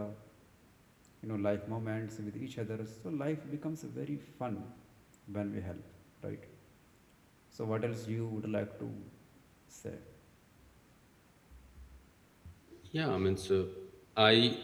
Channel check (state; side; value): identical; both; correlation 1.00